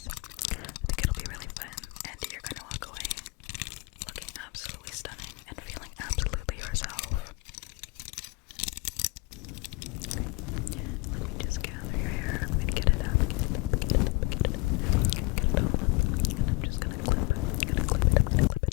I think it'll be really fun, and you're gonna walk away looking absolutely stunning and feeling absolutely yourself. Let me just gather your hair. Let me get it up. Get it all. And I'm just gonna clip it. I'm gonna clip it,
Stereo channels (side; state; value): right; quieter; 25.6 dB